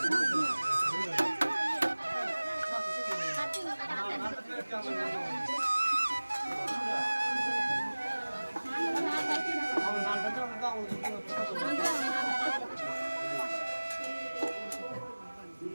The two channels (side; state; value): both; inverted; correlation -1.00